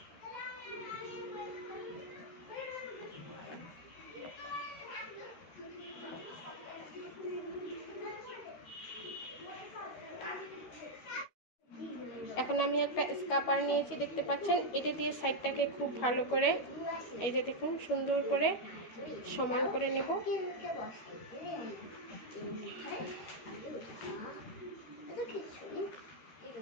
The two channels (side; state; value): right; late; 12 ms